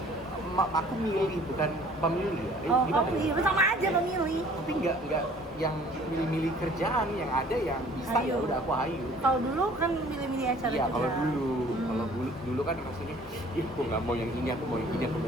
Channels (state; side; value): normal; both; correlation 0.53